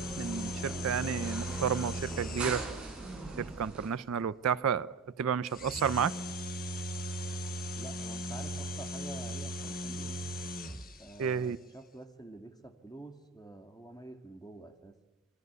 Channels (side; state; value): left; quieter; 4.7 dB